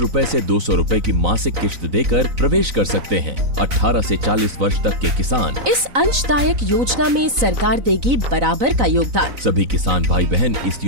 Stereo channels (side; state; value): left; late; 4.0 ms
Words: से 200 रूपए की मासिक किश्त देकर प्रवेश कर सकते हैं। 18 से 40 वर्ष तक के किसान इस अंशदायक योजना में सरकार देगी बराबर का योगदान। सभी किसान भाई बहन इस